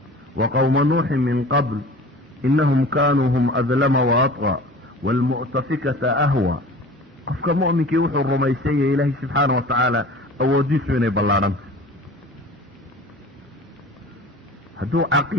وقوم نوح من قبل إنهم كانوا هم أظلم وأطغى والمؤتفكة أهوى قفك مؤمنك يوحو الرميسية إلهي سبحانه وتعالى أوديس من بلارم هدو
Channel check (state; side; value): normal; both; correlation 0.40